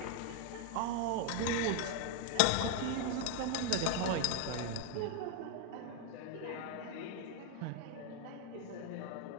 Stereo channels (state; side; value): different; both; correlation 0.00